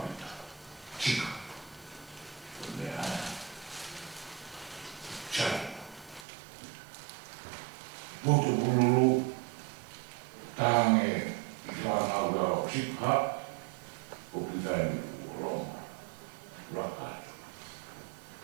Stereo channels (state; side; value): drops out; left; at 6.2 s